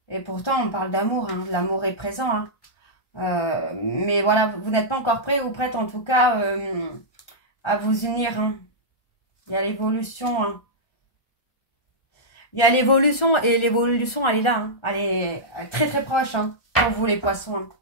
Et pourtant, on parle d'amour. Hein. L'amour est présent. Hein. Mais voilà, vous n'êtes pas encore prêt ou prête, en tout cas, à vous unir. Hein. Il y a l'évolution. Hein. Il y a l'évolution et l'évolution, elle est là. Hein. Elle est très très proche hein, pour vous les poissons. Hein.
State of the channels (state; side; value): late; right; 1.4 ms